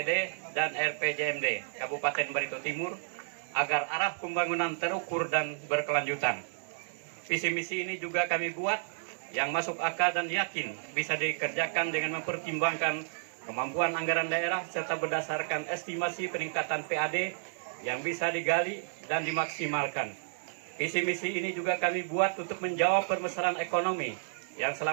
dan RPJMD Kabupaten Barito Timur agar arah pembangunan terukur dan berkelanjutan. Visi misi ini juga kami buat yang masuk akal dan yakin bisa dikerjakan dengan mempertimbangkan kemampuan anggaran daerah serta berdasarkan estimasi peningkatan PAD yang bisa digali dan dimaksimalkan. Visi misi ini juga kami buat untuk menjawab permasalahan ekonomi yang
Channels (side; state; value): left; silent; digital silence